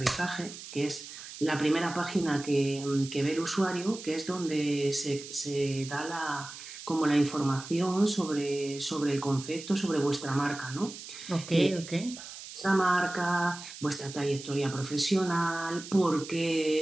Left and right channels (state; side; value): noise; right; hiss, 13 dB below the sound